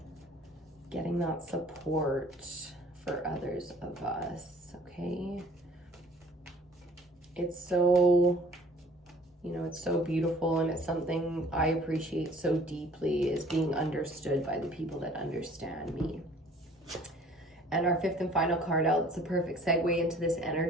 Getting that support for others of us, okay? It's so, you know, it's so beautiful, and it's something I appreciate so deeply, is being understood by the people that understand me. And our fifth and final card out, it's a perfect segue into this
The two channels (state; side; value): normal; both; correlation 0.52